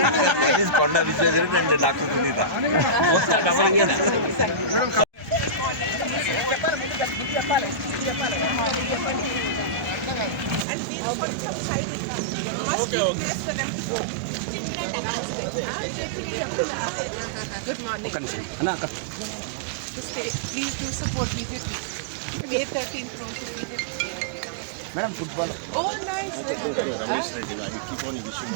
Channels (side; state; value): left; drops out; at 10.7 s